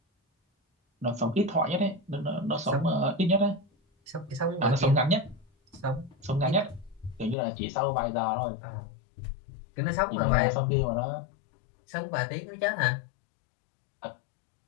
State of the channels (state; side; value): drops out; right; at 7.4 s